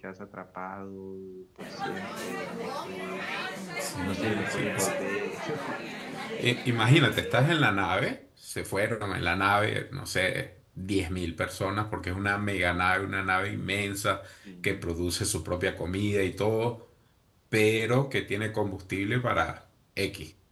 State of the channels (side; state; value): both; identical; correlation 1.00